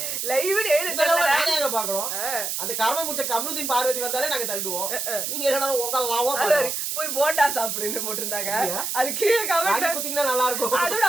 லைவ்னு எழுதுங்க பாக்கணும். அந்த கர்ம முடிச்ச கமருதீன் பார்வதி வந்தாலே நாங்க தள்ளுவோம். நீங்க என்னடா உங்க லவ் போய் போண்டா சாப்பிடுன்னு போட்டிருந்தாங்க. அது கீழே கமெண்ட் குத்திங்கன்னா நல்லா இருக்கும். அதோட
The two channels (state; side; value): noise; right; hiss, 2 dB below the sound